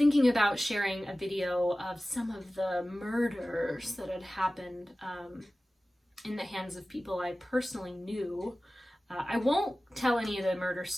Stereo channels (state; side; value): normal; both; correlation 0.96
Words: about sharing a video of some of the murders that had happened in the hands of people I personally knew. I won't tell any of the murder